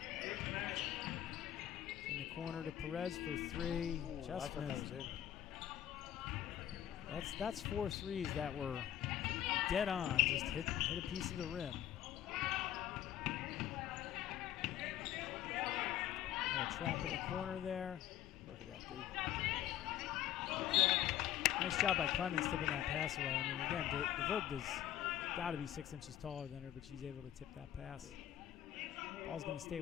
In the corner to Perez for 3. Ooh, Just I thought missed. that was in. That's 4 threes that were dead on. Just hit a piece of the rim. Got a trap in the corner there. Look at that, dude. Nice job by Clemens tipping that pass away. I mean, again, DeVoogd has got to be 6 inches taller than her, but she's able to tip that pass. Ball's going to stay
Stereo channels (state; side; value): quieter; right; 11.9 dB